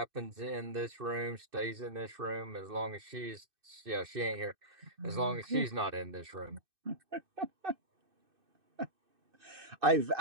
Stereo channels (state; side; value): late; left; 2.6 ms